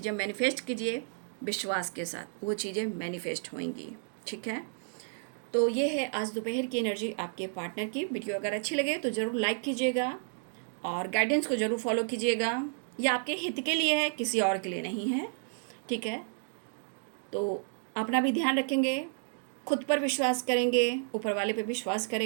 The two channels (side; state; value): left; silent; digital silence